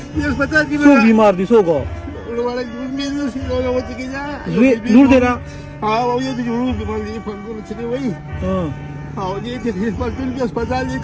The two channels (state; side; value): identical; both; correlation 1.00